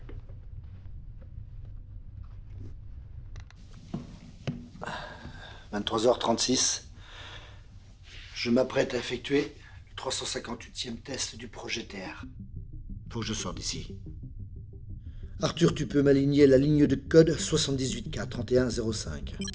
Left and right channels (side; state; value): both; identical; correlation 1.00